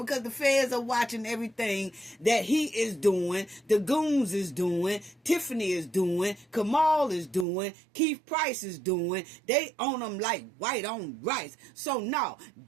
the feds are watching everything that he is doing, the goons is doing, Tiffany is doing, Kamal is doing, Keith Price is doing. They own them like white on rice. So no,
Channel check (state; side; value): drops out; left; at 7.5 s